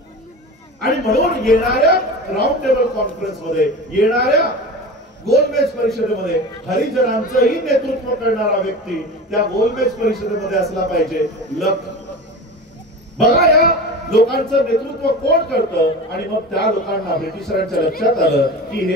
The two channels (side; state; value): both; normal; correlation 0.31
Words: आणि म्हणून येणाऱ्या राऊंड टेबल कॉन्फरन्स मध्ये, येणाऱ्या गोलमेज परिषदेमध्ये हरिजनांचंही नेतृत्व करणारा व्यक्ती त्या गोलमेज परिषदेमध्ये असला पाहिजे. बघा या लोकांचं नेतृत्व कोण करतं आणि मग त्या लोकांना ब्रिटिशरांच्या लक्षात आलं की